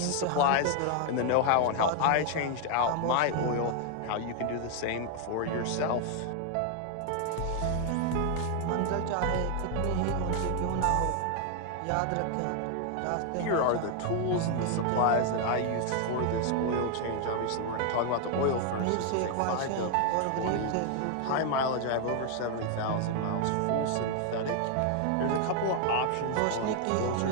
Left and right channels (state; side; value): different; both; correlation 0.00